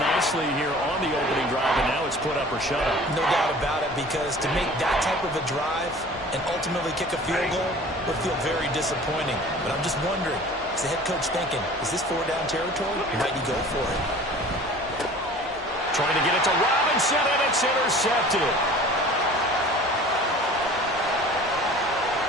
here on the opening drive, and now it's put up or shut up. No doubt about it, because to make that type of a drive and ultimately kick a field goal would feel very disappointing. But I'm just wondering, is the head coach thinking, is this 4-down territory? Might he go for it? Trying to get it to Robinson, and it's intercepted.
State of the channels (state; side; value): normal; both; correlation 0.45